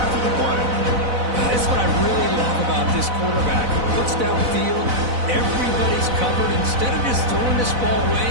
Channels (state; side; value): late; left; 4.0 ms